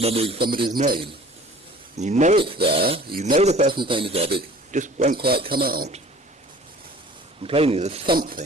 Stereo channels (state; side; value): normal; both; correlation 0.47